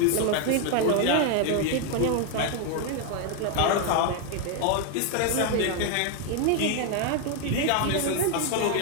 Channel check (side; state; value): both; different; correlation 0.01